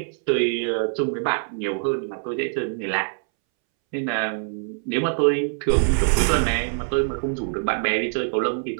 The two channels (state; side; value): silent; left; 63 dB below the other